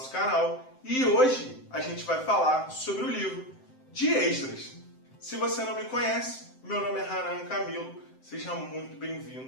canal e hoje a gente vai falar sobre o livro de Esdras. Se você não me conhece, meu nome é Hanan Camilo, seja muito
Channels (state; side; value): late; right; 7.7 ms